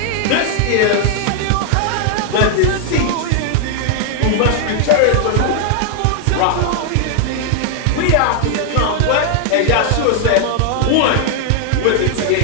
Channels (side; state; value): both; different; correlation 0.00